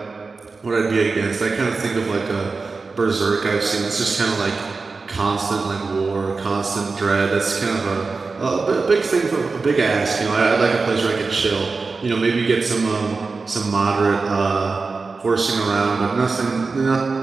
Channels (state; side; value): quieter; left; 4.2 dB